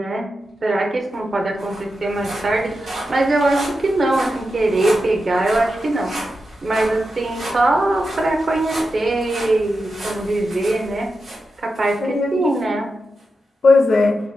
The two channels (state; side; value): normal; both; correlation 0.89